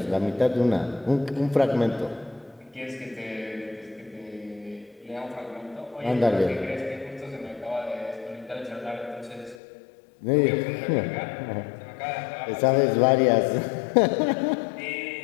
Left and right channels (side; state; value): right; drops out; at 9.6 s